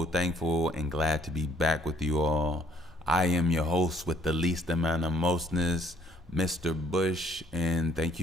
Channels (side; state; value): both; normal; correlation 0.61